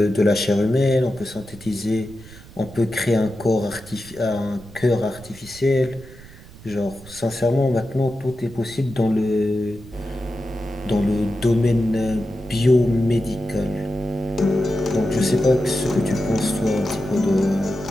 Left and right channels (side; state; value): right; noise; rumble, 19 dB below the sound